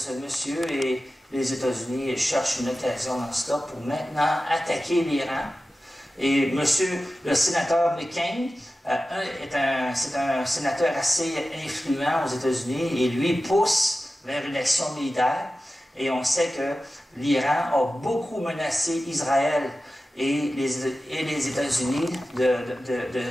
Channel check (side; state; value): both; normal; correlation 0.94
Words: monsieur et les États-Unis cherchent une occasion dans cela pour maintenant attaquer l'Iran. Et le sénateur McCain, c'est un sénateur assez influent aux États-Unis et lui pousse vers une action militaire. Et on sait que l'Iran a beaucoup menacé Israël et les États-Unis